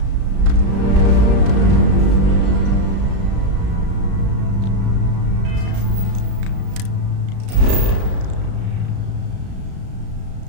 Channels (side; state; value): left; late; 34 ms